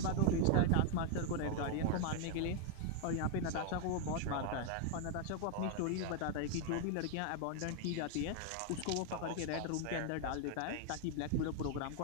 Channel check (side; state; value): both; different; correlation 0.00